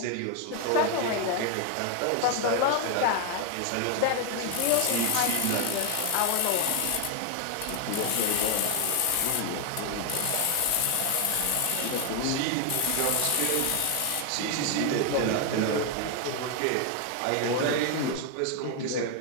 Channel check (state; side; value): different; both; correlation 0.00